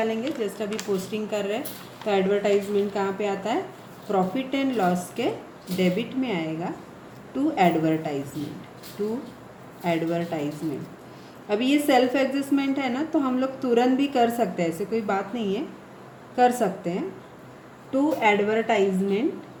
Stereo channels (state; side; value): identical; both; correlation 1.00